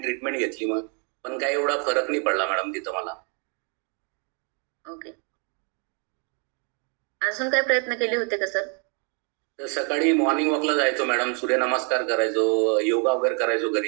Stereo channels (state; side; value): quieter; left; 38.1 dB